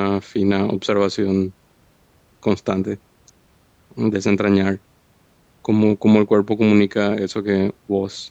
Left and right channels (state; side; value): identical; both; correlation 1.00